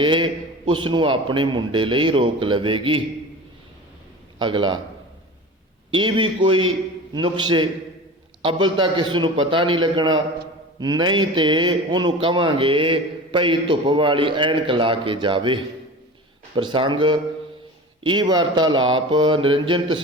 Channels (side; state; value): both; normal; correlation 0.34